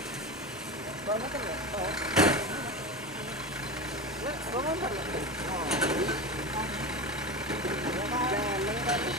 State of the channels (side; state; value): both; normal; correlation 0.24